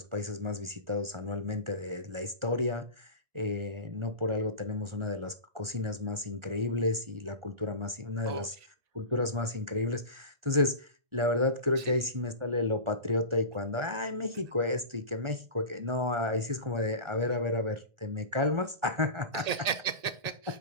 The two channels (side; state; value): left; late; 1.8 ms